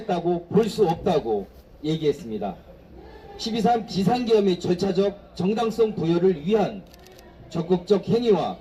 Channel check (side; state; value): both; identical; correlation 1.00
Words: 볼 수 없다고 얘기했습니다. 12.3 비상계엄의 절차적 정당성 부여를 위한 적극적 행위와